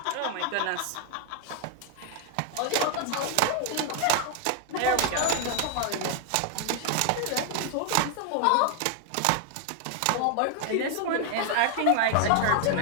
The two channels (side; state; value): both; different; correlation 0.00